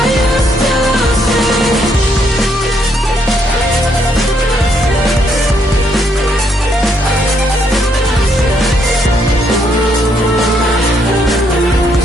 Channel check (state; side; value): normal; both; correlation 0.73